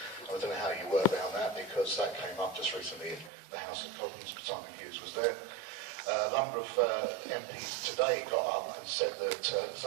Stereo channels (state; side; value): drops out; left; at 3.3 s